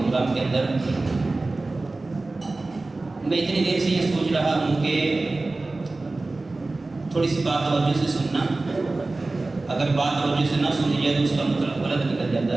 کے اندر. میں اتنی دیر سے یہ سوچ رہا ہوں کہ تھوڑی سی بات توجہ سے سننا، اگر بات توجہ سے نہ سنی جائے تو اس کا مطلب غلط نکل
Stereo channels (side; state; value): left; quieter; 3.2 dB